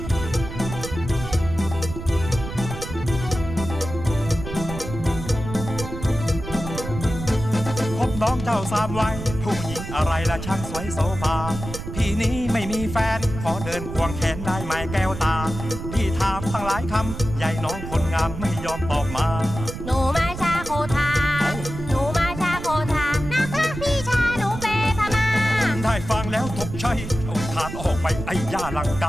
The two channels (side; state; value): right; noise; rumble, 8 dB below the sound